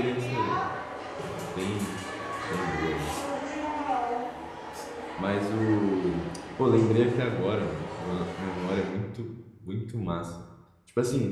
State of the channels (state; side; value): identical; both; correlation 1.00